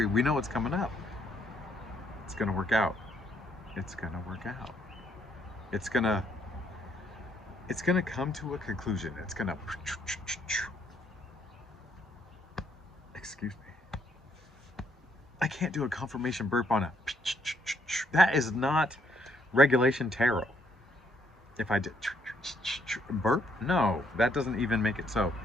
We know what's coming up. It's gonna work out. It's gonna work out. It's gonna come to a conclusion. It's gonna. Excuse me. I can't do a confirmation burp on a. That is not regulation tarot. If I did burp, no, that doesn't even make it so.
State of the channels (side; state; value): both; normal; correlation 0.70